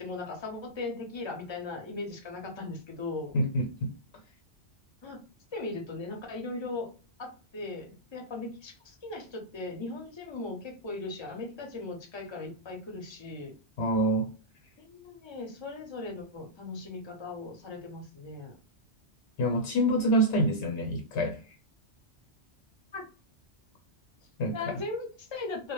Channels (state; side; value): normal; both; correlation -0.14